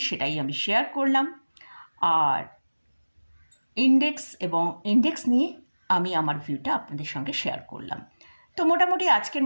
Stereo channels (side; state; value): both; inverted; correlation -1.00